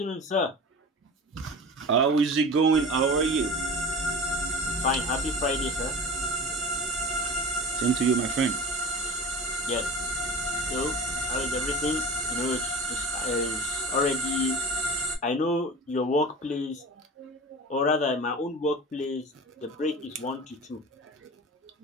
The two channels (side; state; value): both; normal; correlation 0.34